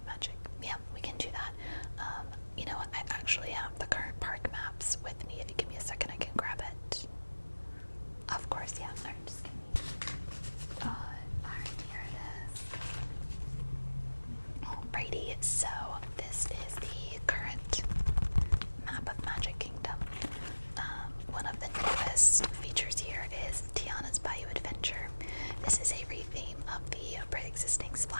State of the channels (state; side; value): inverted; both; correlation -1.00